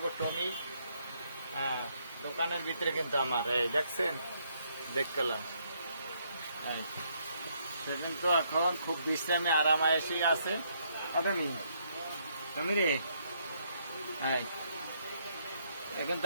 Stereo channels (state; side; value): inverted; both; correlation -0.72